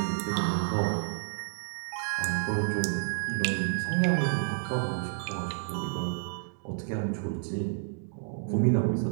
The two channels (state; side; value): silent; left; digital silence